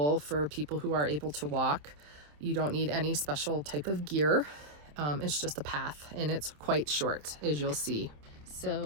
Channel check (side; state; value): left; late; 27 ms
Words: for people who are able to walk. You don't need any special type of gear. It's just a path, and it's quite short, as you'll see.